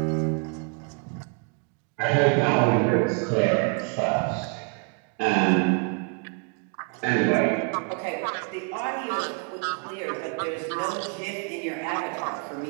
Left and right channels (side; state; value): left; quieter; 36.9 dB